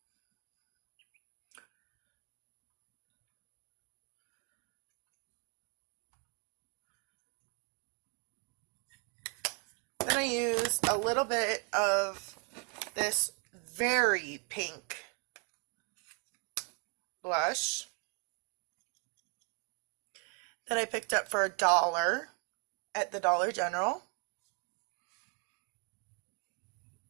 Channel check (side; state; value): left; quieter; 35.3 dB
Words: Then I use a little bit of this very pink blush that I picked up for $1 at the Dollar General.